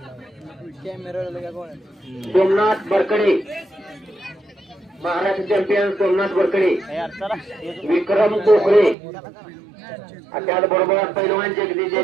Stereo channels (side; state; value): left; drops out; at 9.0 s